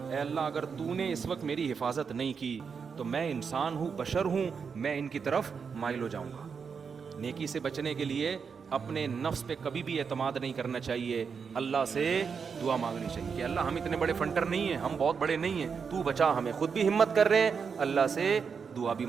اے اللہ اگر تو نے اس وقت میری حفاظت نہیں کی تو میں انسان ہوں, بشر ہوں, میں ان کی طرف مائل ہو جاؤں گا. نیکی سے بچنے کے لیے اپنے نفس پہ کبھی بھی اعتماد نہیں کرنا چاہیے, اللہ سے دعا مانگنی چاہیے کہ اللہ ہم اتنے بڑے فنٹر نہیں ہیں, ہم بہت بڑے نہیں ہیں, تو بچا ہمیں. خود بھی ہمت کر رہے ہیں, اللہ سے دعا بھی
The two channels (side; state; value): left; quieter; 6.0 dB